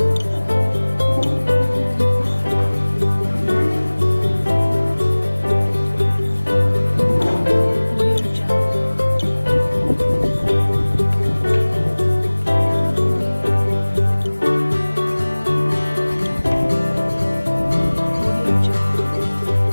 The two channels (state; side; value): inverted; both; correlation -1.00